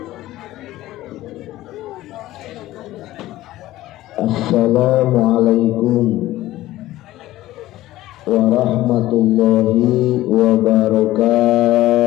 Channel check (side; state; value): right; quieter; 15.8 dB